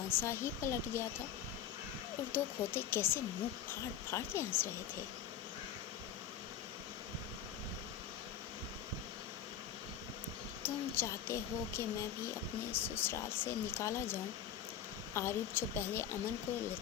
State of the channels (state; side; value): quieter; right; 9.2 dB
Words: ہی پلٹ گیا تھا اور دو کھوتے کیسے منہ پھاڑ پھاڑ کے ہنس رہے تھے۔ تم چاہتے ہو کہ میں بھی اپنے سسرال سے نکالا جاؤں؟ عارف جو پہلے امن کو